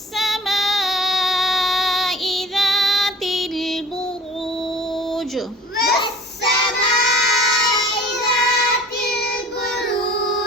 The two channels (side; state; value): both; normal; correlation 0.45